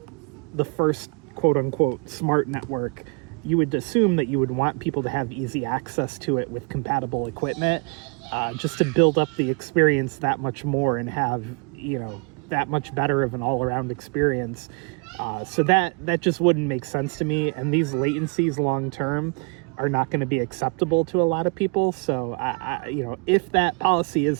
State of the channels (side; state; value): left; quieter; 34.9 dB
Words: the first quote-unquote smart network, you would assume that you would want people to have easy access to it with compatible equipment, just to build up the experience that much more and have, you know, that much better of an all-around experience. So that just wouldn't make sense to me, and these latencies long-term are not going to be acceptable to a lot of people. So you know, if that policy